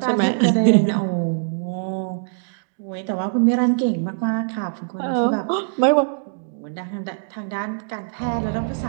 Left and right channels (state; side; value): silent; left; digital silence